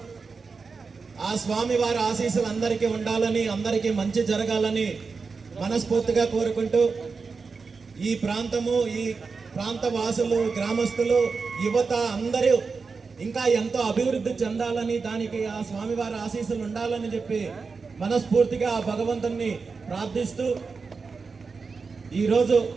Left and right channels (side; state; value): left; quieter; 4.7 dB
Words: ఆ స్వామి వారి ఆశీస్సులు అందరికీ ఉండాలని, అందరికీ మంచి జరగాలని మనస్ఫూర్తిగా కోరుకుంటూ ఈ ప్రాంతము, ఈ ప్రాంత వాసులు, గ్రామస్తులు, యువత అందరూ ఇంకా ఎంతో అభివృద్ధి చెందాలని, దానికి ఆ స్వామివారి ఆశీస్సులు ఉండాలని చెప్పి మనస్ఫూర్తిగా ఆ భగవంతుని ప్రార్థిస్తూ ఈరోజు